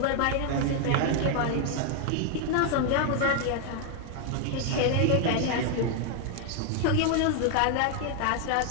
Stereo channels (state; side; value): different; both; correlation 0.00